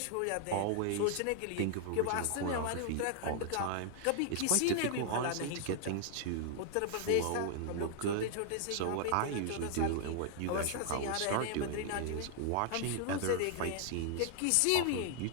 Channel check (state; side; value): different; both; correlation -0.01